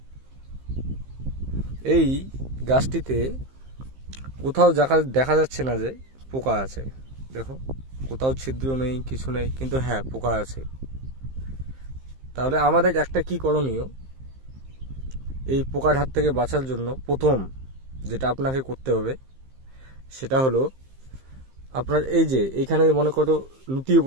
এই গাছটিতে কোথাও দেখা যাচ্ছে না যে পোকা আছে, দেখো কোথাও ছিদ্র নেই, কিছু নেই, কিন্তু হ্যাঁ পোকা আছে। তাহলে আমাদের একটা কি করণীয়, এই পোকার হাত থেকে বাঁচার জন্য প্রথম যেটা আপনাকে করতে হবে সেটা হলো আপনার এই যে এইখানে মনে করো লুটিয়ে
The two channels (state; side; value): late; left; 15 ms